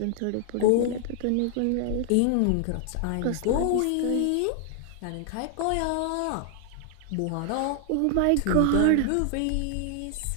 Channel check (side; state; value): both; different; correlation 0.00